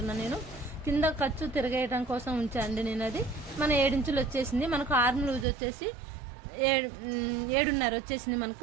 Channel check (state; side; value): drops out; left; at 5.5 s